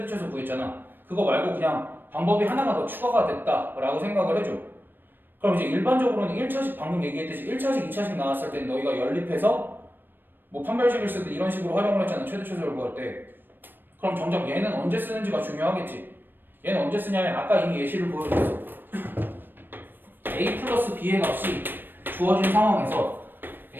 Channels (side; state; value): left; late; 0.094 ms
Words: 최소 구했잖아. 그거 말고 그냥 방법이 하나가 더 추가가 됐다라고 생각을 해줘. 그럼 이제 일반적으로는 1차식 방금 얘기했듯이 1차식, 2차식 나왔을 때 너희가 연립해서 뭐 판별식을 쓰든 이런 식으로 활용을 했잖아. 최대 최소를 구할 때. 그럼 정작 얘는 언제 쓰는지가 중요하겠지. 얘는 언제 쓰냐면 아까 이미 예시를 보여줬어. a 플러스 b의 값이 주어진 상황에서